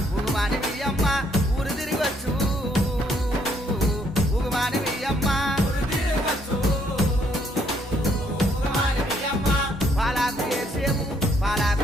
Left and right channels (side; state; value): both; normal; correlation 0.69